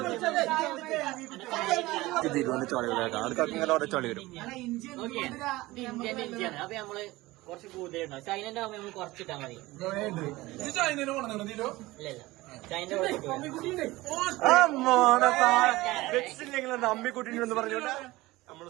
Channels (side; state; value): left; quieter; 19.4 dB